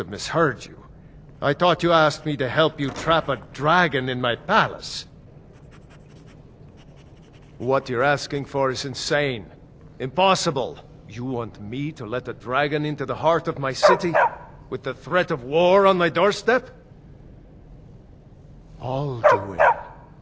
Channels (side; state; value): both; identical; correlation 1.00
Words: misheard you. I thought you asked me to help you trap a dragon in my palace. What you're asking for is insane. Impossible. You want me to let a dragon into the heart of my city, with the threat of war on my doorstep? Alduin,